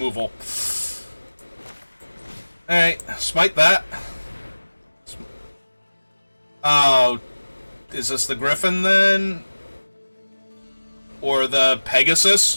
Alright, smite that. Oh, is this the Griffin then? Or the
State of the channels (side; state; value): both; inverted; correlation -1.00